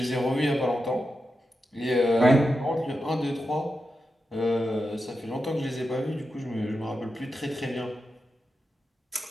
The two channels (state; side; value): normal; both; correlation 0.89